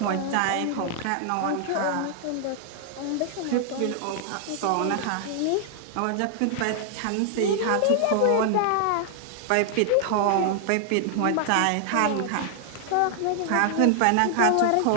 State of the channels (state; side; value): different; both; correlation 0.00